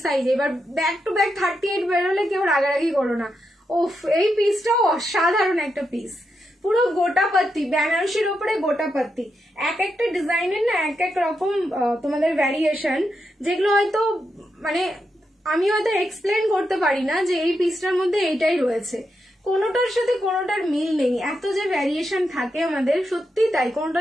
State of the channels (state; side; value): normal; both; correlation 0.84